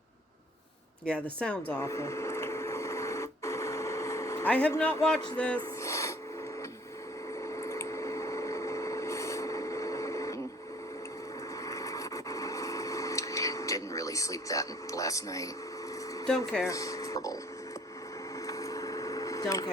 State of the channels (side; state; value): both; normal; correlation 0.55